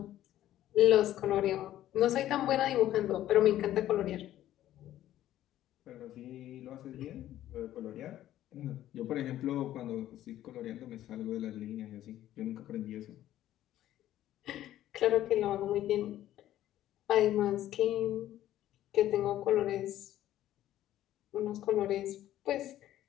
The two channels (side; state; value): right; quieter; 13.0 dB